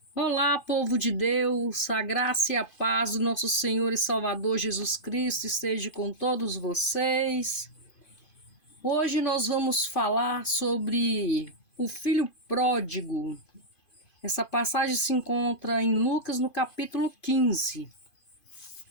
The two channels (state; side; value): late; right; 2.5 ms